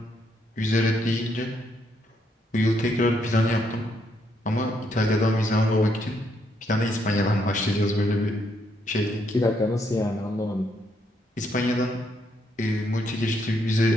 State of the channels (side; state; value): both; normal; correlation 0.74